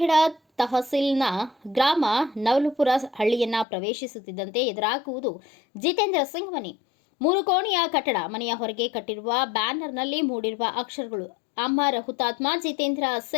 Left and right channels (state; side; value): drops out; right; at 3.7 s